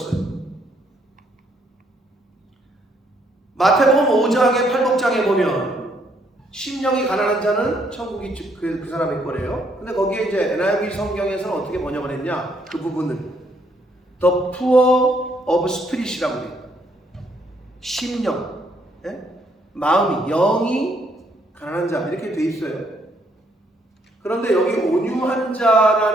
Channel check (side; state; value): both; normal; correlation 0.70